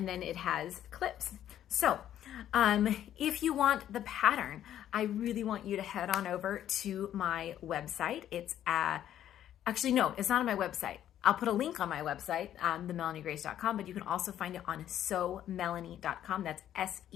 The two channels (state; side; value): quieter; right; 11.2 dB